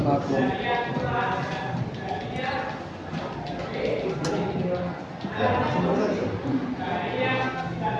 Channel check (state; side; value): identical; both; correlation 1.00